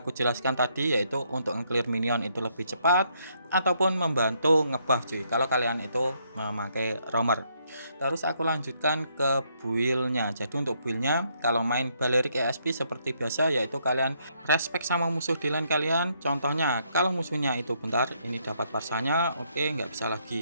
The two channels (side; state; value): both; inverted; correlation -0.72